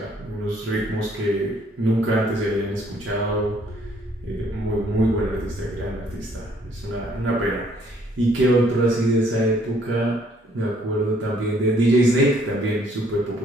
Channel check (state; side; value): normal; both; correlation 0.64